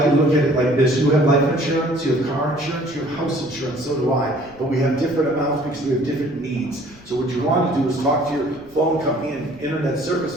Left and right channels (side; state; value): left; noise; rumble, 25 dB below the sound